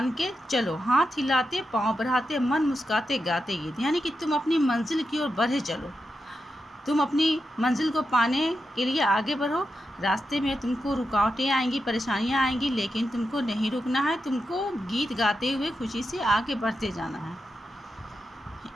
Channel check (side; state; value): both; normal; correlation 0.88